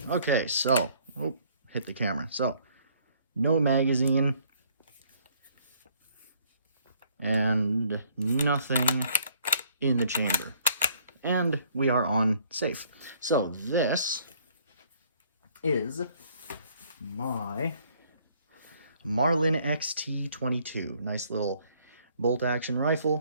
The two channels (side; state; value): both; inverted; correlation -0.62